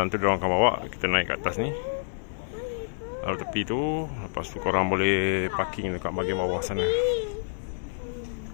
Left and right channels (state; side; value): silent; right; 60 dB below the other